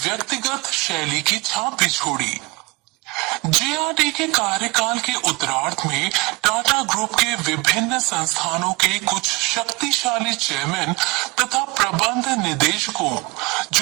शैली की छाप भी छोड़ी। जे.आर.डी. के कार्यकाल के उत्तरार्ध में टाटा ग्रुप के विभिन्न संस्थानों के कुछ शक्तिशाली चेयरमैन तथा प्रबंध निदेशकों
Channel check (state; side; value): quieter; left; 25.4 dB